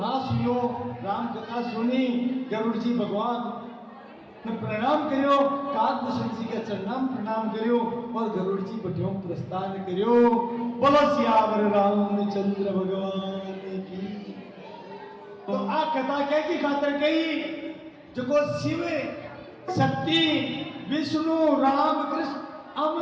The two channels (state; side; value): identical; both; correlation 1.00